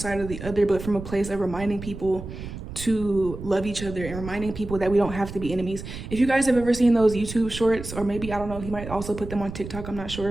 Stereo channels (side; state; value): right; noise; rumble, 10 dB below the sound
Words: or the other, but from a place of reminding people to love each other and reminding people that we don't have to be enemies. If you guys have ever seen those YouTube shorts, or maybe, I don't know, he might also put them on TikTok, I'm not